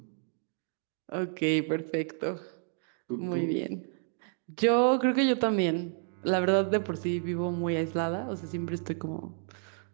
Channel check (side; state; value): left; silent; 57 dB below the other